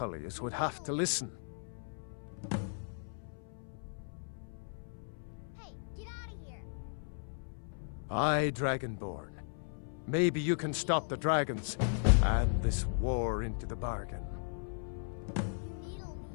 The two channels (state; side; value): silent; right; 54 dB below the other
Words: would have to listen. Aye, Dragonborn. Maybe you can stop the dragons, and this war into the bargain.